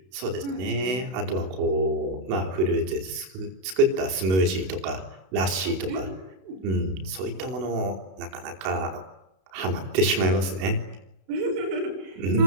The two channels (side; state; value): left; late; 32 ms